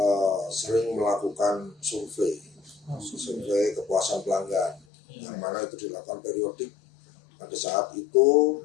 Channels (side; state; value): right; drops out; at 4.9 s